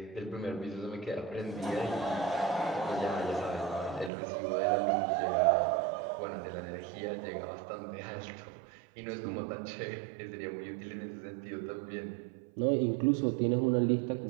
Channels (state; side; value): drops out; left; at 4.1 s